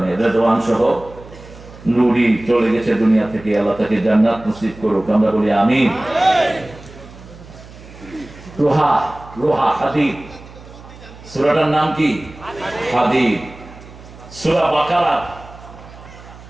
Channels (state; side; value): noise; right; hum, 19 dB below the sound